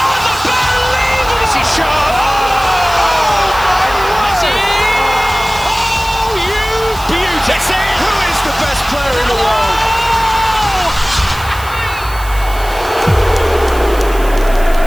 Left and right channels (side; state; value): right; noise; hiss, 16 dB below the sound